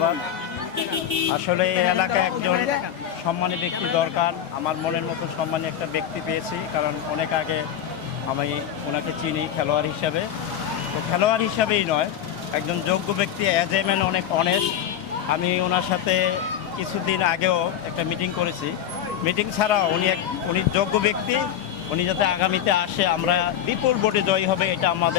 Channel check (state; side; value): quieter; right; 9.9 dB